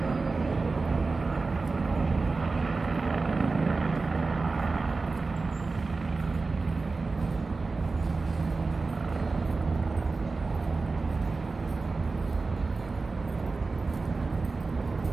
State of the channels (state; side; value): quieter; left; 3.9 dB